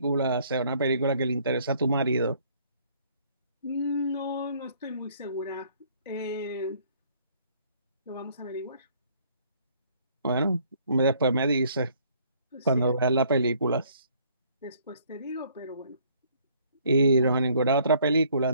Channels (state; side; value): inverted; both; correlation -0.61